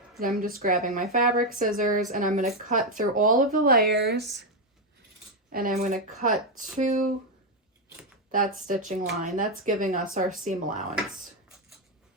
And I'm just grabbing my fabric scissors and I'm going to cut through all of the layers, and I'm going to cut to that stitching line. That's giving us our seam allowance.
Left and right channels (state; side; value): normal; both; correlation 0.05